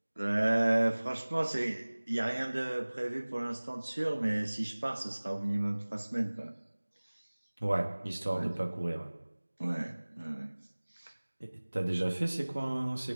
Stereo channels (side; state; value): both; inverted; correlation -1.00